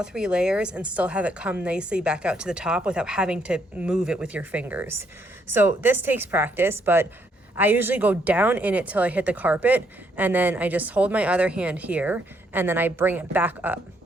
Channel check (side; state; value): both; normal; correlation 0.72